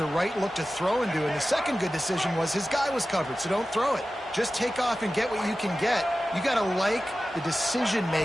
right look to throw into. And the second good decision was his guy was covered, so don't throw it. Just take off and get what you can get. You got to like the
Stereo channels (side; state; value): both; normal; correlation 0.95